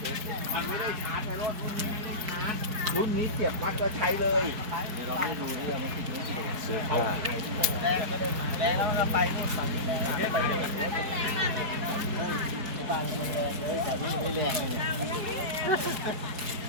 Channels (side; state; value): left; late; 4.7 ms